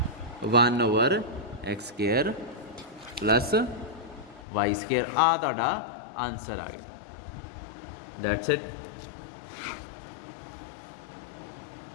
1/x square plus Y square. आ तुहाडा आंसर आ गया। That's it.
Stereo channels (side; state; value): right; drops out; at 4.5 s